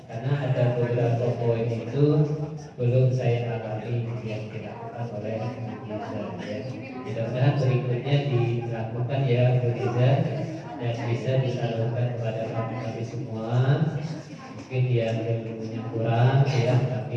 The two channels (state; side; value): identical; both; correlation 1.00